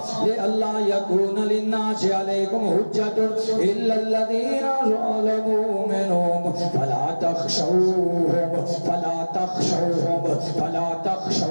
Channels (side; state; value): both; inverted; correlation -1.00